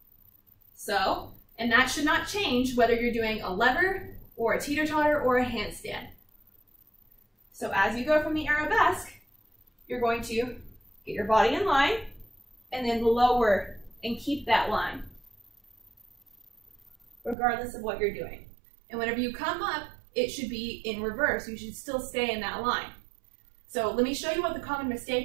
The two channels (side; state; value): left; drops out; at 17.4 s